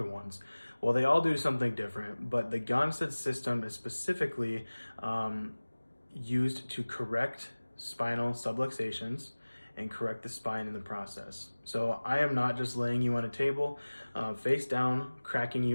ones? Well, they all do something different, but the Gonstead system is specifically used to correct spinal subluxations and correct the spine in the process. So I am not just laying you on a table, face down, cracking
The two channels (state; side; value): inverted; both; correlation -1.00